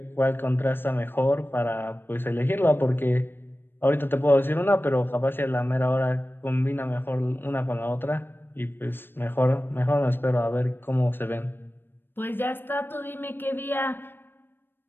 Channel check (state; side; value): late; right; 0.099 ms